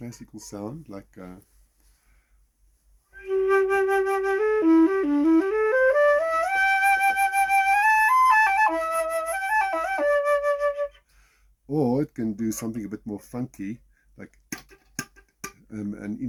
sound, like, or it can do something a bit more funky, like, and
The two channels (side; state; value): both; identical; correlation 1.00